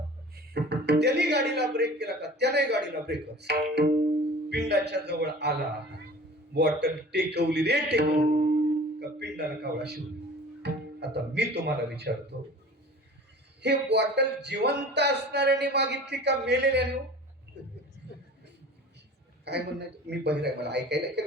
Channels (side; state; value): both; normal; correlation 0.42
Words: त्याने गाडीला ब्रेक केला का? त्याने गाडीला ब्रेक. पिंडाच्या जवळ आला, बॉटल टेकवली रे टेकवली का पिंडाला कावळा शिवला. आता मी तुम्हाला विचारतो, हे बॉटल जिवंत असणाऱ्याने मागितली का मेलेल्याने? काय म्हणणं? मी बहिर आहे, मला ऐकायला